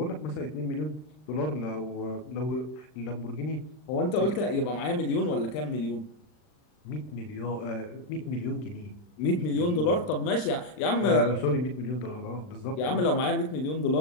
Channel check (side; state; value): right; late; 39 ms